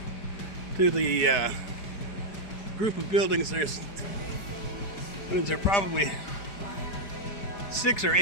to the group of buildings. There's probably 6 or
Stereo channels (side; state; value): right; late; 4.7 ms